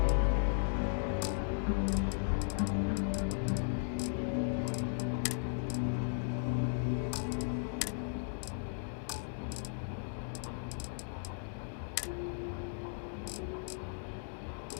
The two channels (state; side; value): silent; right; digital silence